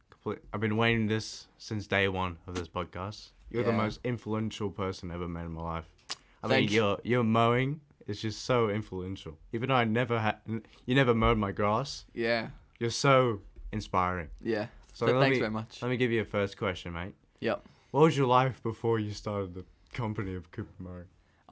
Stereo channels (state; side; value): identical; both; correlation 1.00